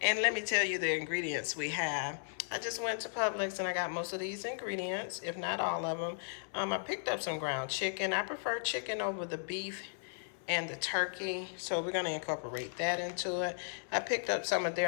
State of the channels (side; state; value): right; silent; 54 dB below the other